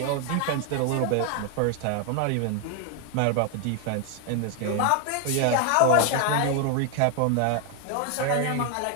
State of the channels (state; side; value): different; both; correlation 0.01